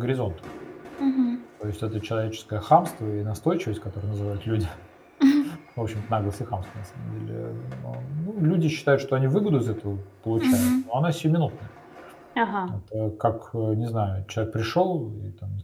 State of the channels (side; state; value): both; identical; correlation 1.00